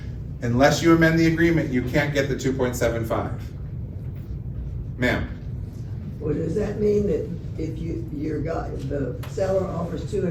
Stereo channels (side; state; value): both; identical; correlation 1.00